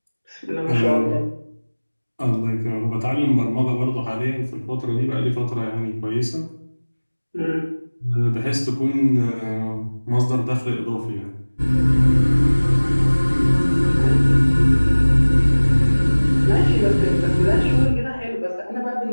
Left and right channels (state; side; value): inverted; both; correlation -1.00